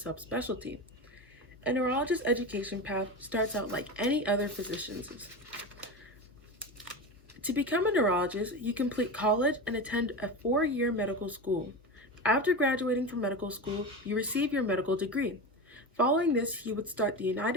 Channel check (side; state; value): both; normal; correlation 0.23